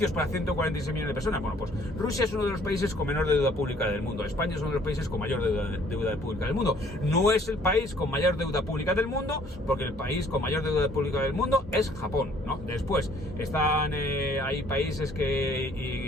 para 146 millones de personas. Bueno, pues Rusia es uno de los países con menor deuda pública del mundo. España es uno de los países con mayor deuda pública del mundo. No es el país con mayor deuda pública del mundo, porque el país con mayor deuda pública del mundo es Japón, ¿no? Después están, hay países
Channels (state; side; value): normal; both; correlation 0.59